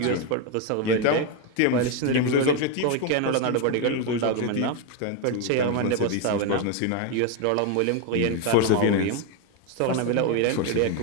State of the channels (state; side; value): different; both; correlation 0.02